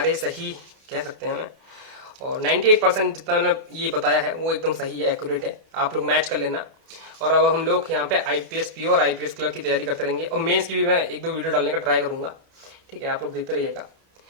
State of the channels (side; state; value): left; late; 31 ms